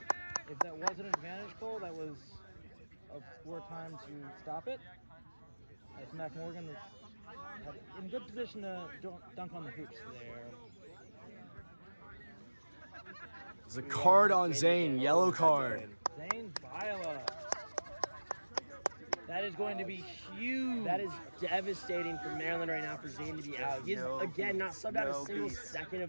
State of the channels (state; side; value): inverted; both; correlation -1.00